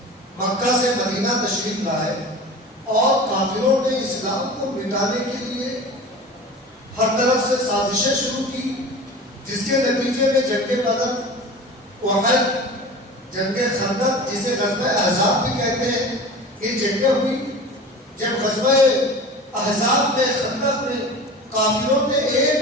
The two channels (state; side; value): normal; both; correlation 0.36